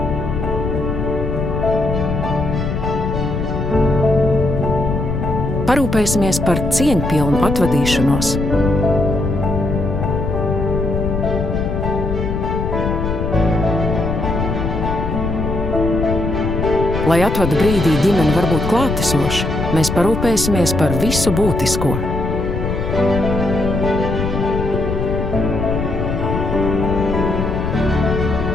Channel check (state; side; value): noise; left; rumble, 2 dB below the sound